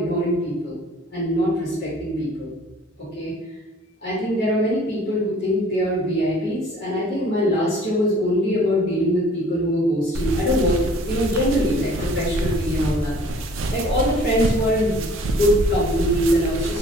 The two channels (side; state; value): both; normal; correlation 0.53